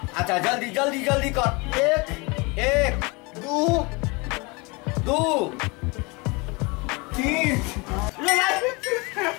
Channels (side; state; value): right; quieter; 27.1 dB